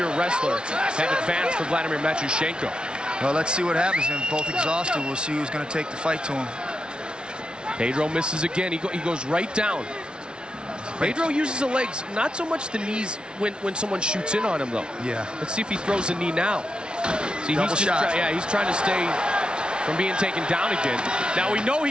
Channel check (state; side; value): late; left; 0.056 ms